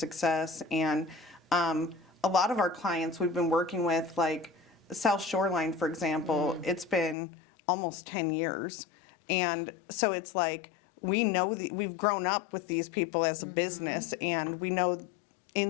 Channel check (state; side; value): drops out; right; at 7.2 s